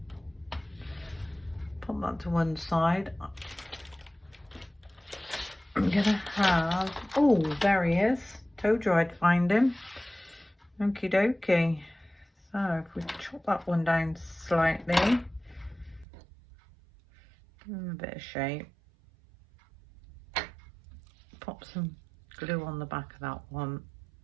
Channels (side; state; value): left; drops out; at 16.1 s